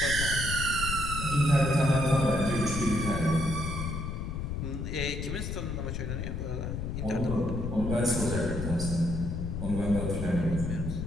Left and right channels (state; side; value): noise; left; rumble, 3 dB below the sound